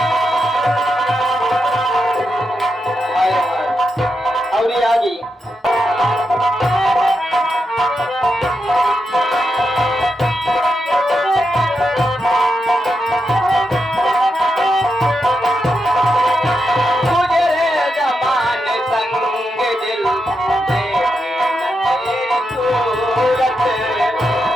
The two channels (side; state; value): both; normal; correlation 0.85